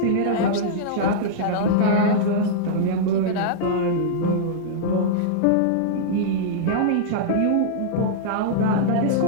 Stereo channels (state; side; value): different; both; correlation -0.02